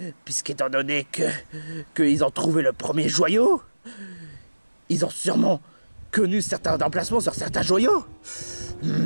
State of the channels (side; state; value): both; inverted; correlation -1.00